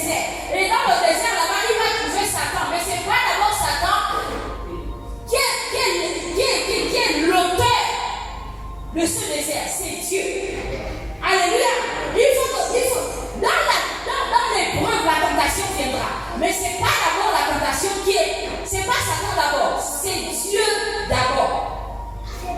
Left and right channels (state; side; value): identical; both; correlation 1.00